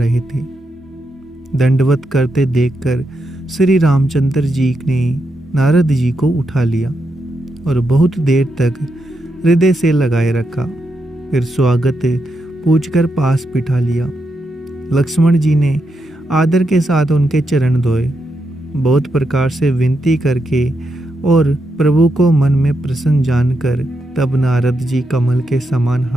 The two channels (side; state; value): both; normal; correlation 0.83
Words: थे। दंडवत करते देखकर श्री रामचंद्र जी ने नारद जी को उठा लिया और बहुत देर तक हृदय से लगाए रखा। फिर स्वागत पूछकर पास बिठा लिया। लक्ष्मण जी ने आदर के साथ उनके चरण धोए, बहुत प्रकार से विनती करके और प्रभु को मन में प्रसन्न जानकर तब नारद जी कमल के समान